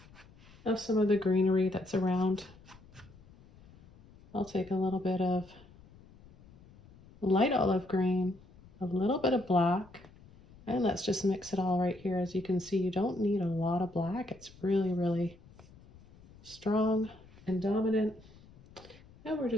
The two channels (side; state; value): left; noise; rumble, 24 dB below the sound